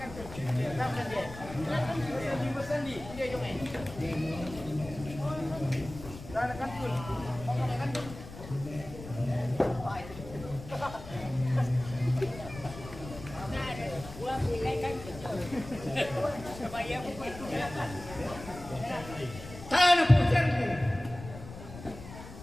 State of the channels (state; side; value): noise; left; rumble, 13 dB below the sound